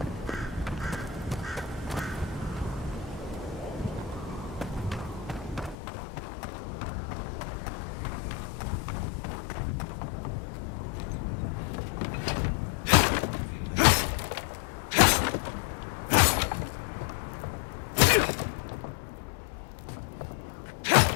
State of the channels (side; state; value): right; drops out; at 5.8 s